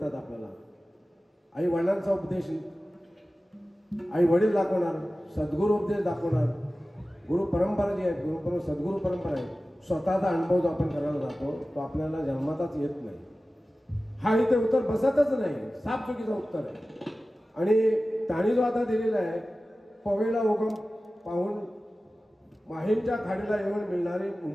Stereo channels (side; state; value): both; normal; correlation 0.96